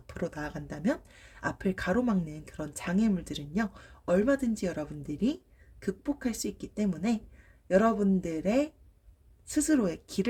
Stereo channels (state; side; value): identical; both; correlation 1.00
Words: 나아간다면 앞을 가로막는 그런 장애물들은요, 얼마든지 여러분들이 극복할 수 있기 때문에 여러분들의 스스로의